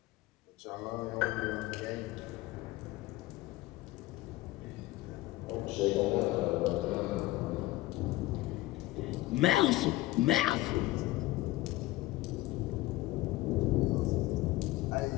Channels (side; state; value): right; quieter; 18.0 dB